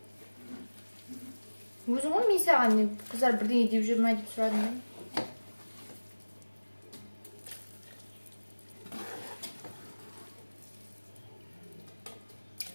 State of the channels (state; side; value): inverted; both; correlation -1.00